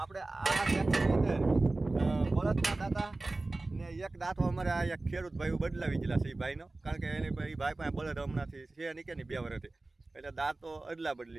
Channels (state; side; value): quieter; left; 3.1 dB